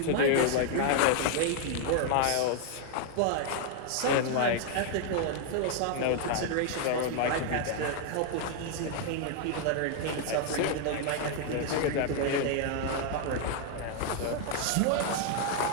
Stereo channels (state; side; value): different; both; correlation 0.00